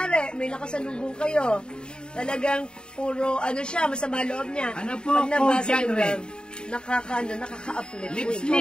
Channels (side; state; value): right; late; 0.049 ms